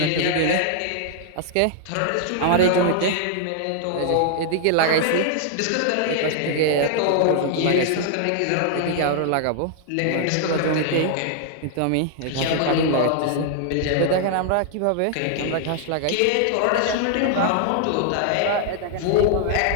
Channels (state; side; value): different; both; correlation 0.00